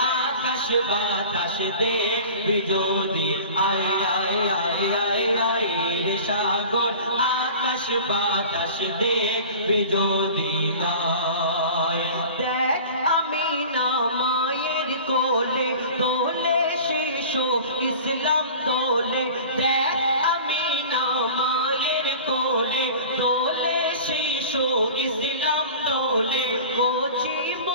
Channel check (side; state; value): both; inverted; correlation -0.39